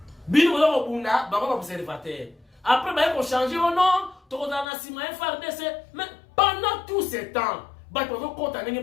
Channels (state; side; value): drops out; right; at 4.7 s